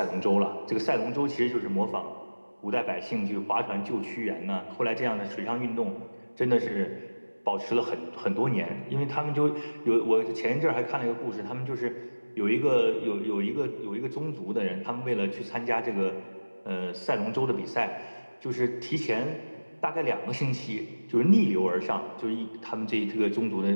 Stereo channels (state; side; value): inverted; both; correlation -1.00